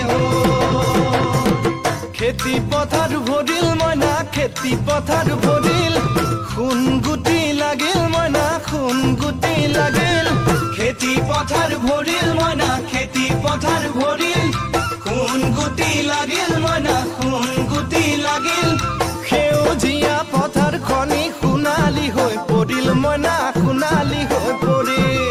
খেতি পথাৰ ভৰিল মইনা খেতি পথাৰ ভৰিল খুন গুটি লাগিল মইনা খুন গুটি লাগিল খেতি পথাৰ ভৰিল মইনা খেতি পথাৰ ভৰিল খুন গুটি লাগিল মইনা খুন গুটি লাগিল সেউজীয়া পথাৰ খনি সোণালী হৈ পৰিল মইনা সোণালী হৈ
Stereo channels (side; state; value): both; identical; correlation 1.00